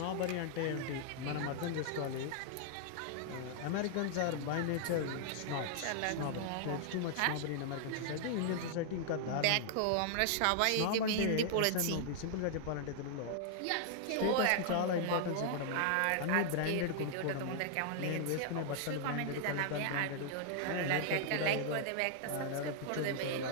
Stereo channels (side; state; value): both; different; correlation -0.01